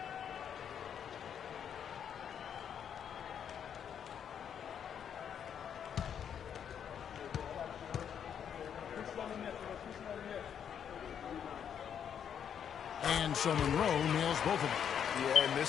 And so Monroe nails both of them. Yeah, in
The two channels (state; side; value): quieter; right; 8.4 dB